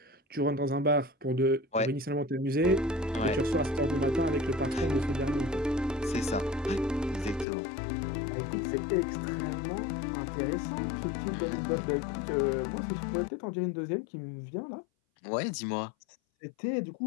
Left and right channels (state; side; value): drops out; right; at 7.5 s